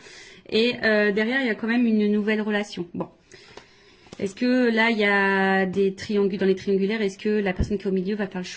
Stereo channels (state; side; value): identical; both; correlation 1.00